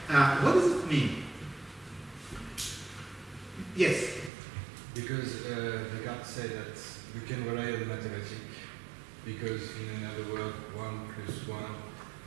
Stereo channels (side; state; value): left; drops out; at 4.3 s